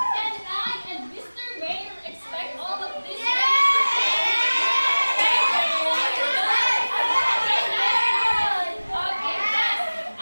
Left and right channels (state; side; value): inverted; both; correlation -1.00